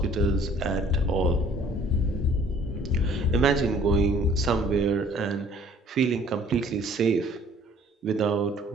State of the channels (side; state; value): both; normal; correlation 0.55